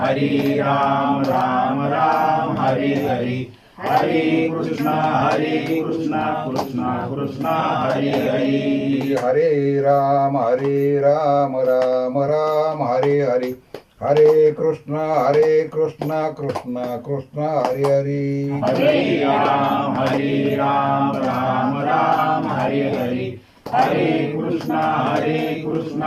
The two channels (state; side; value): identical; both; correlation 1.00